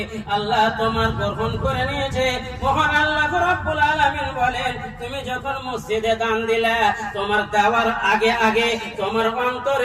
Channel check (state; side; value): identical; both; correlation 1.00